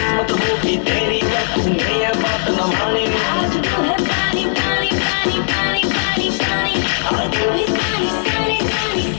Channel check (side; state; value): right; silent; digital silence